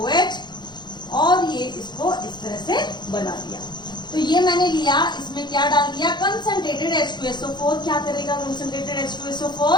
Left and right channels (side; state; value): right; late; 0.21 ms